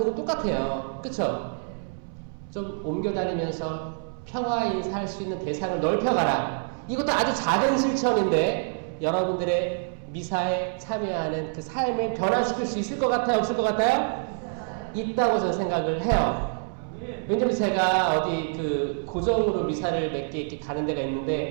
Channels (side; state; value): left; silent; 61 dB below the other